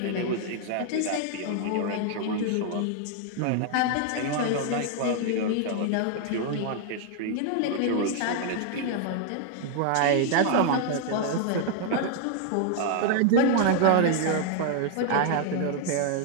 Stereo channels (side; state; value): both; different; correlation 0.00